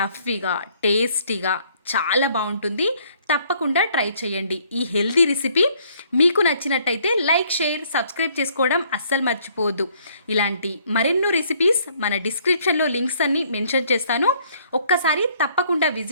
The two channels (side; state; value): both; inverted; correlation -0.63